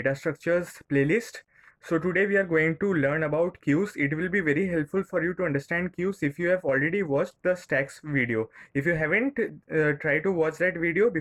structures playlist. So today we are going to learn about queues. It will be very helpful for you to understand queues if you have already watched the stacks video. If you haven't, try to watch that video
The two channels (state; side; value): identical; both; correlation 1.00